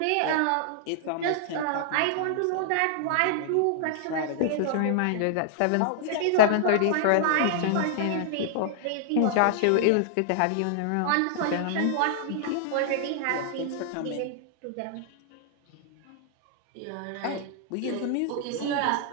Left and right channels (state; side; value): different; both; correlation -0.01